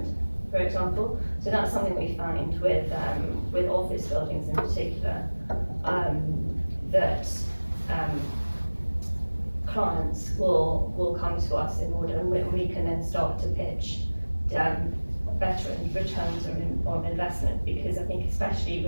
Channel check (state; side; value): inverted; both; correlation -1.00